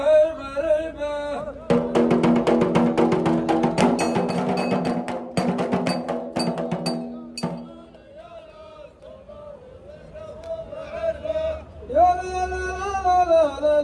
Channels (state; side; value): identical; both; correlation 1.00